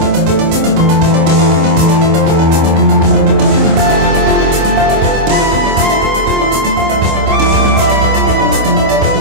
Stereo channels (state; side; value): late; left; 26 ms